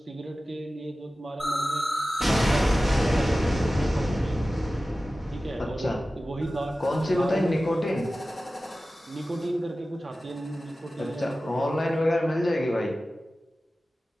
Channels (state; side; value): normal; both; correlation 0.95